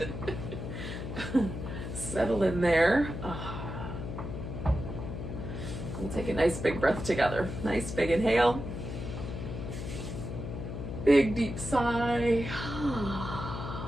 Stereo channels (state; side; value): noise; left; hum, 6 dB below the sound